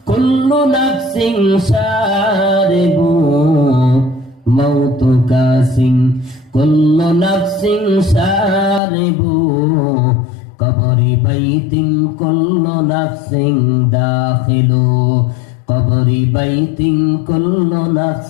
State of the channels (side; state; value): right; drops out; at 8.8 s